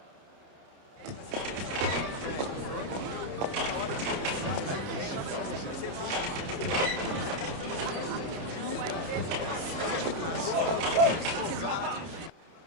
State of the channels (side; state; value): left; late; 30 ms